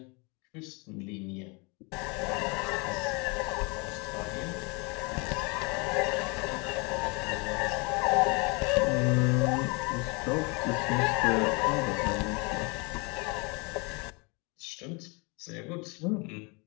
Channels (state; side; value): quieter; right; 29.9 dB